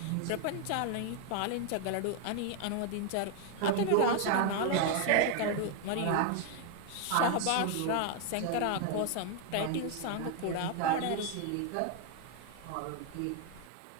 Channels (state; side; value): different; both; correlation 0.01